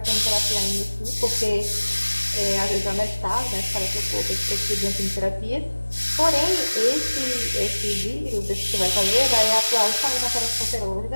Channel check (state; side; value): inverted; both; correlation -1.00